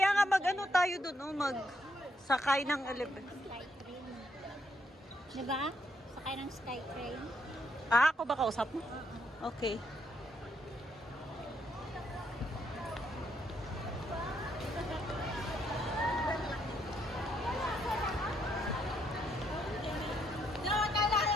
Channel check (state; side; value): normal; both; correlation 0.74